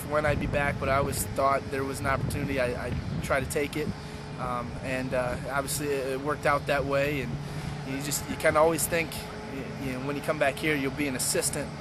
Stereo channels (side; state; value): both; identical; correlation 1.00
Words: when I'd be back, but I always thought there was an opportunity. I'd try to take it, and obviously it worked out that way. And you kind of always think, when you come back here, you'll be an assistant